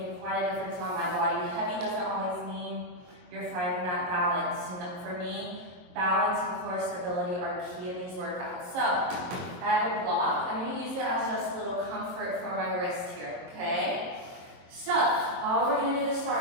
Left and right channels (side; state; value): left; late; 22 ms